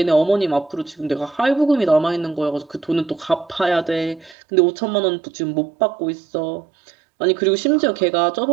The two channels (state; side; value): drops out; left; at 4.4 s